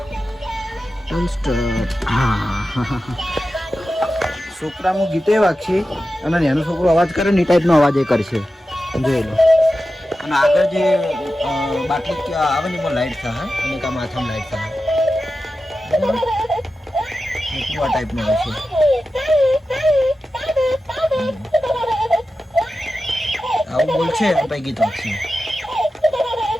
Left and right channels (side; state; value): both; normal; correlation 0.93